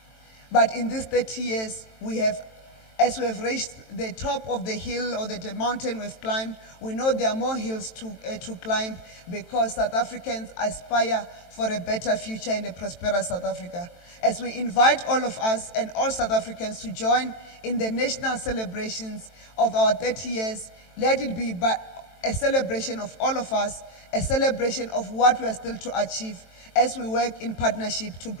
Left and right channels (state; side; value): late; right; 23 ms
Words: But in these 30 years, as we have reached the top of the hill or the mountain we've climbed, we know there are more hills to climb because South Africans aspire for a better future in a prosperous South Africa. As we invite all of us and all South Africans to join in the national celebrations of our 30 years, let it be a celebration of all of us, a celebration of what we are still to achieve as we work in partnership to